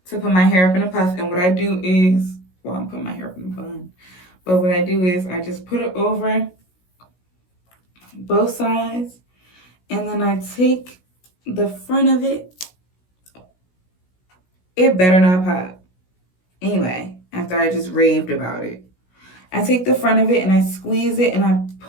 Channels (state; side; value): late; right; 16 ms